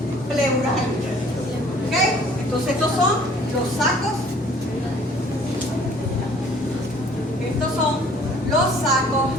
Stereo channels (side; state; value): both; normal; correlation 0.55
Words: pleurales. ¿Ok? Entonces estos son los sacos. Estos son los sacos